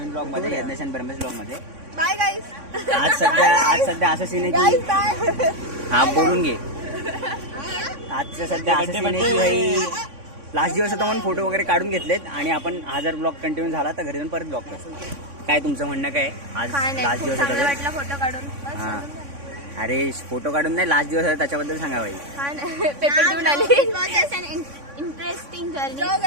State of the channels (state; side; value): late; left; 3.6 ms